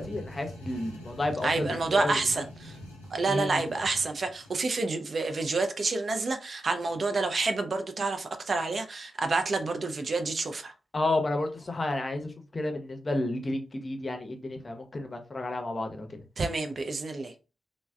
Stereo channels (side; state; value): both; normal; correlation 0.89